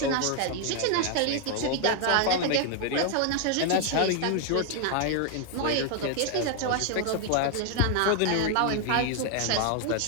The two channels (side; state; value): both; different; correlation 0.00